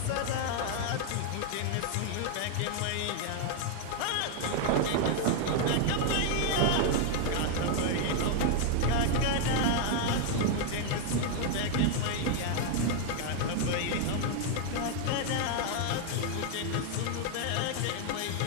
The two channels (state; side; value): different; both; correlation 0.00